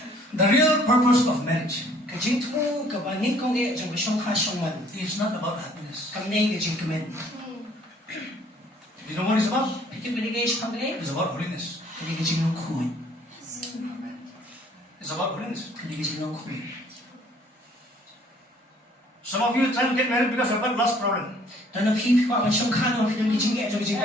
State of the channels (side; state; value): both; normal; correlation 0.58